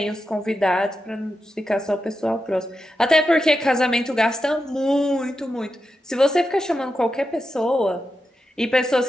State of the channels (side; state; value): both; normal; correlation 0.89